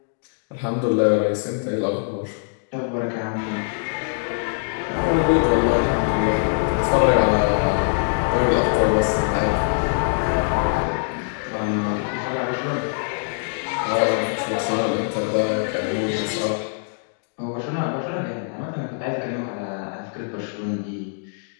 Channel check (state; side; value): silent; right; digital silence